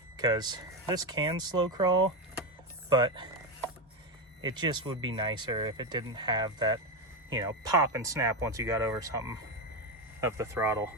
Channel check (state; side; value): normal; both; correlation 0.11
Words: because this can slow crawl, but it just would be nicer if it didn't have that, you know, pop and snap once you got over something of the throttle.